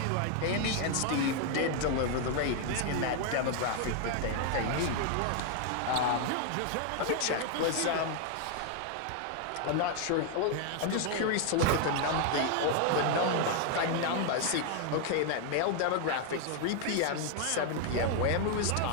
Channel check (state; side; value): different; both; correlation 0.00